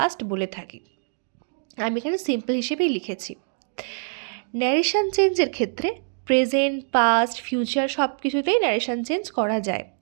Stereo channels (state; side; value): silent; left; digital silence